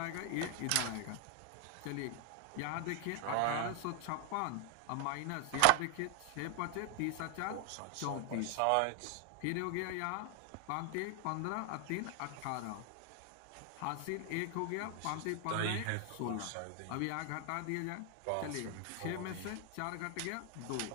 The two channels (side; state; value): both; different; correlation 0.00